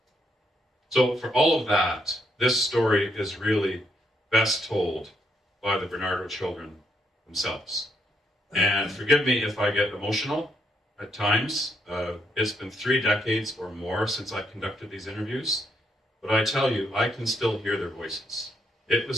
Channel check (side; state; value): both; normal; correlation 0.76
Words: So for all of that, this story is really best told by the Barnardo children themselves. And forgive me if I get emotional at times. It's been 3 decades or more since I conducted these interviews, but I tell you, I can still hear their voices. It